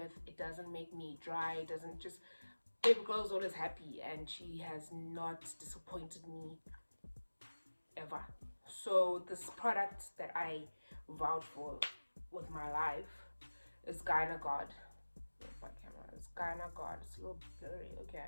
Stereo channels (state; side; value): inverted; both; correlation -1.00